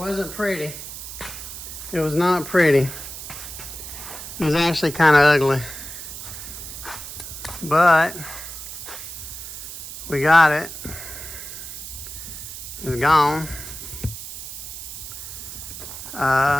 pretty. It was not pretty. It was actually kind of ugly. But we got it. It's gone.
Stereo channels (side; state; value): right; noise; hiss, 10 dB below the sound